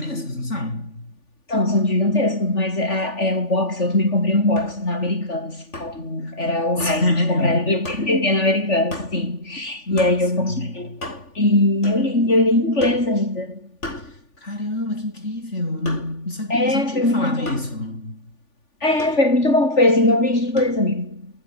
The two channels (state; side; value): late; right; 3.5 ms